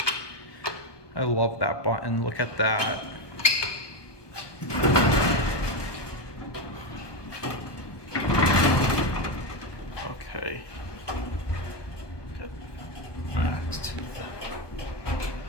I love that button. Look at that. Okay. Next.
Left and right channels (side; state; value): right; late; 1.2 ms